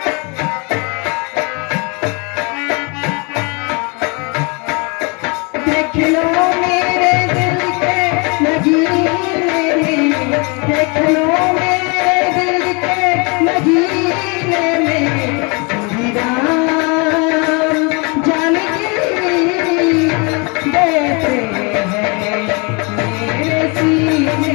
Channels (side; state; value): right; quieter; 31.1 dB